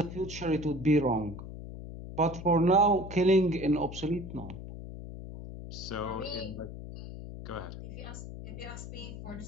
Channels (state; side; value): noise; left; hum, 10 dB below the sound